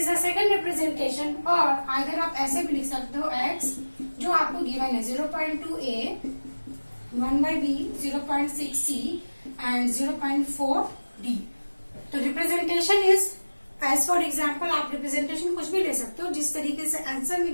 a second representation, और अगर आप ऐसे भी लिख सकते हो एक्स जो आपको गिवन है 0.2 A, 1/b, 0.6 C and 0.4 D. तो representation is as for example, आप रिप्रेजेंटेशन कुछ भी ले सकते हो, जिस तरीके से आंसर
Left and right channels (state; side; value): inverted; both; correlation -1.00